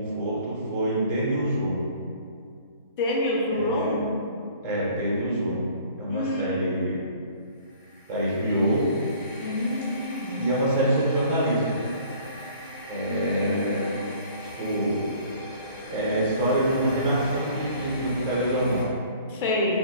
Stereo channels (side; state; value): both; inverted; correlation -0.53